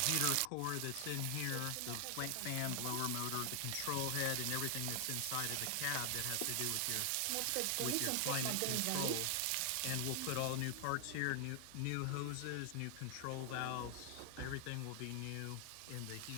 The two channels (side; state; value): both; different; correlation 0.00